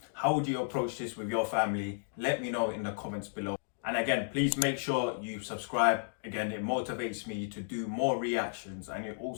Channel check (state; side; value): silent; right; digital silence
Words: How would you approach this with your family? Let me know in the comments below. And again, please make sure you subscribe. Again, it motivates me to do more reactions and it